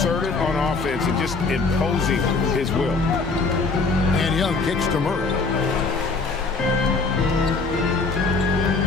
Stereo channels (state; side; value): quieter; right; 4.1 dB